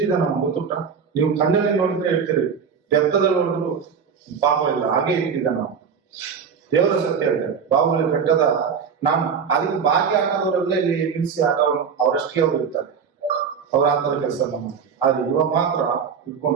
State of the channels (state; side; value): quieter; left; 6.5 dB